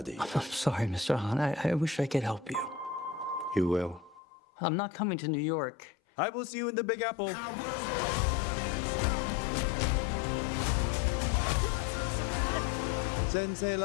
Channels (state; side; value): drops out; right; at 4.2 s